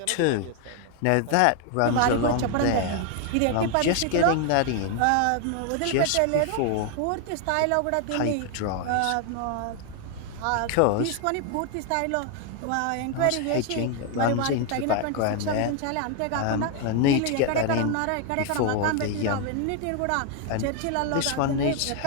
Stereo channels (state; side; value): different; both; correlation 0.01